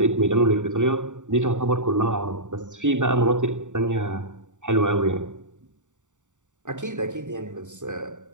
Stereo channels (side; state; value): left; late; 0.86 ms